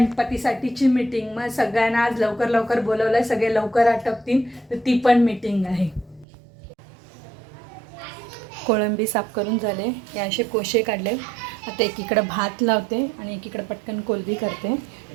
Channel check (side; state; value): left; drops out; at 6.2 s